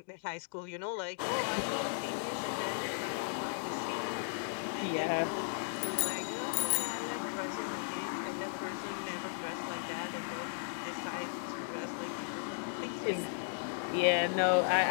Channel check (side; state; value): right; silent; digital silence